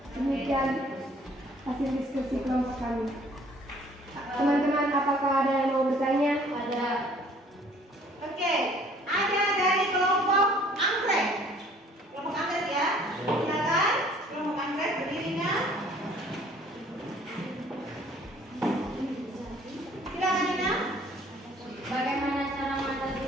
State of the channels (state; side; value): normal; both; correlation 0.56